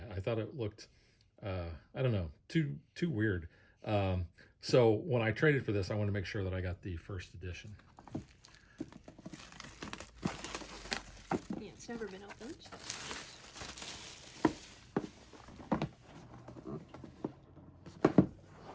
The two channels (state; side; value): identical; both; correlation 1.00